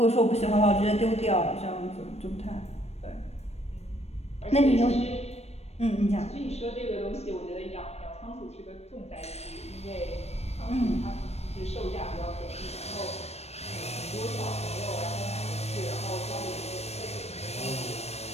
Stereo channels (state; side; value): late; right; 0.31 ms